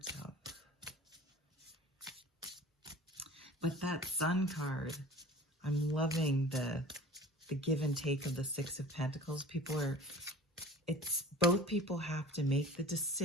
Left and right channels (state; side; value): normal; both; correlation 0.42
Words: out. But that Sun card, I'm loving the give and take of the Six of Pentacles. Both people have to make the